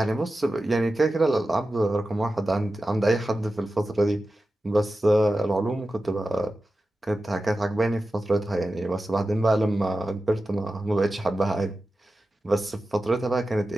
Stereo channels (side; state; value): both; normal; correlation 0.93